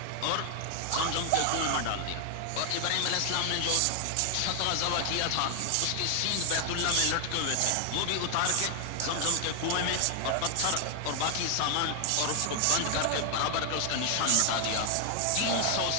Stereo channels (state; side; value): different; both; correlation 0.00